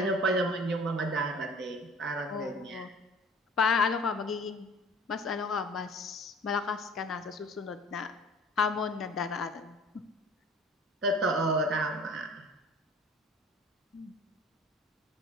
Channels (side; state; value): both; normal; correlation 0.47